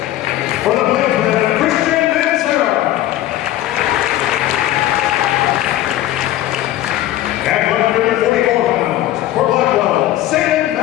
For the Plainsman, Christian Mansera. At 144 pounds, for Blackwell, Sam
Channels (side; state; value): right; quieter; 14.0 dB